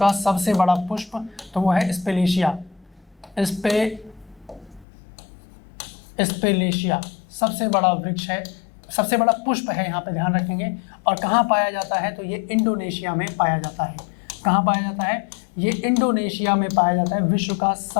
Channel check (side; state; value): right; drops out; at 4.9 s